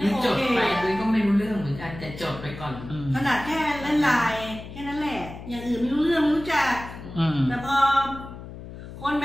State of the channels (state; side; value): noise; left; hum, 13 dB below the sound